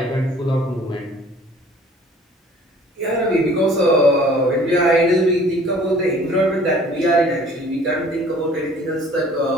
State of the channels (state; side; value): normal; both; correlation 0.52